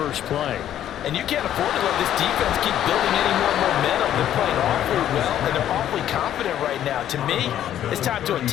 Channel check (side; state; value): right; quieter; 11.1 dB